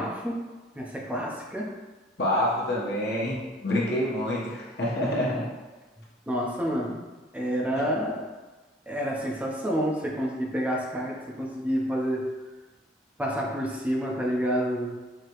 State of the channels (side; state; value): both; normal; correlation 0.54